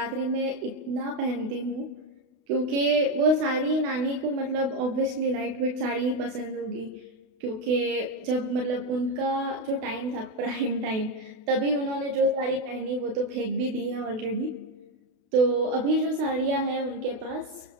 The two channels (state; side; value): late; left; 32 ms